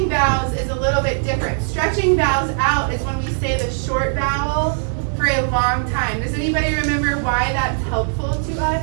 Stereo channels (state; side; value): silent; left; digital silence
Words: vowels is a little bit different. Stretching vowels out is when we say the short vowel for a long time. Does anybody remember why that's helpful to